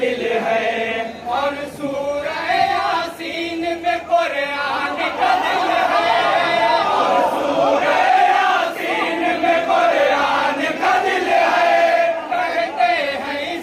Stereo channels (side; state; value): both; identical; correlation 1.00